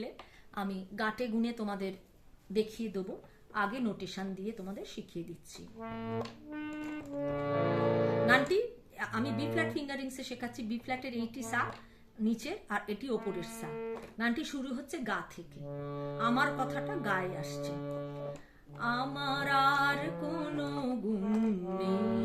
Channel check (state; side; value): identical; both; correlation 1.00